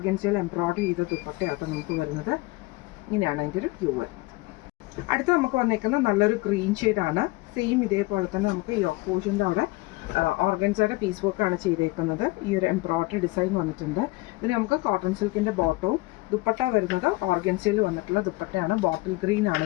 എംബ്രോയിഡറി ചെയ്ത ദുപ്പട്ടയാട്ടോ നമുക്ക് വരുന്നത്. ഇങ്ങനെയാണ് അതിൻ്റെ ഒരു വ്യൂ വരുന്നത്. അടുത്ത നമുക്ക് വന്നേക്കുന്നത് നല്ലൊരു ഗ്രീൻ ഷെയ്ഡാണ്. സെയിം ഇതേപോലെ തന്നെ നമുക്ക് യോക്ക് പോർഷൻ്റെ അവിടെ ഓർഗൻസയുടെ പീസ് വർക്കാണ് ചെയ്തേക്കുന്നത്. ഈ ഒരു എംബ്രോയിഡറി ഡിസൈൻ വന്നിട്ടുണ്ട്. ഇതിന് നമുക്ക് കോട്ടൺ സിൽക്കിൻ്റെ ബോട്ടവും ദുപ്പട്ട വരുന്നത് ഓർഗൻസയിൽ വന്നിട്ടുള്ള ദുപ്പട്ടയാണ്. ബോട്ടിൽ ഗ്രീൻ ആണ്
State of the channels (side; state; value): right; quieter; 22.0 dB